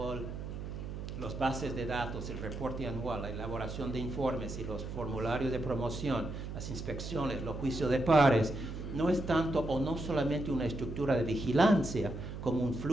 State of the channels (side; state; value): right; noise; hum, 7 dB below the sound